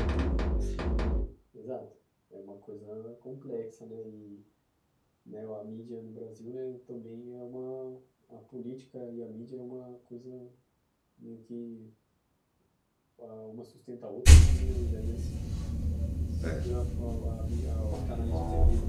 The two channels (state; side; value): identical; both; correlation 1.00